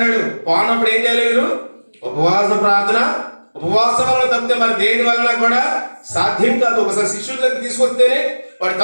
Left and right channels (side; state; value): both; inverted; correlation -1.00